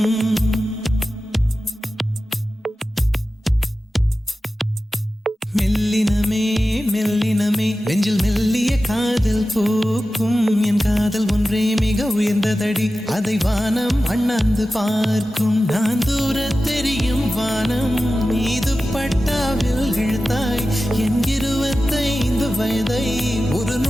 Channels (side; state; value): both; normal; correlation 0.94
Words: மெல்லினமே மெல்லினமே நெஞ்சில் மெல்லிய காதல் பூக்கும். என் காதல் ஒன்றே மிக உயர்ந்ததடி, அதை வானம் அண்ணாந்து பார்க்கும். நான் தூர தெரியும் வானம் மீது பட்டாவில் இழுத்தாய். என் 25 வயதை ஒரு